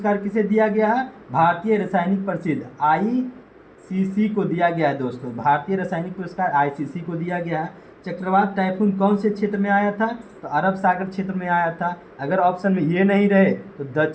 किसे दिया गया है? भारतीय रासायनिक प्रसिद्ध आईसीसी को दिया गया है दोस्तों। भारतीय रासायनिक पुरस्कार आईसीसी को दिया गया है। चक्रवात टाइफून कौन से क्षेत्र में आया था? तो अरब सागर क्षेत्र में आया था। अगर ऑप्शन में ये नहीं रहे तो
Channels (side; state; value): both; identical; correlation 1.00